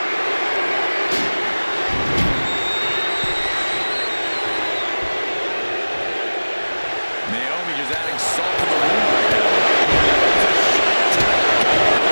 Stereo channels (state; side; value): inverted; both; correlation -1.00